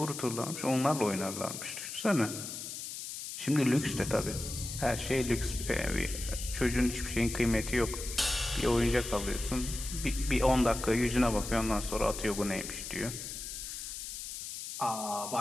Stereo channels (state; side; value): noise; left; hiss, 8 dB below the sound